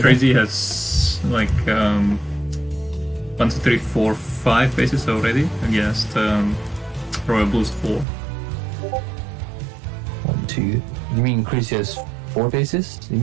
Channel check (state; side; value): drops out; left; at 8.1 s